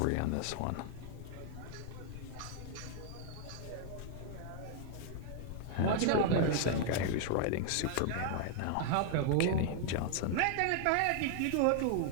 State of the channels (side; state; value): both; different; correlation 0.00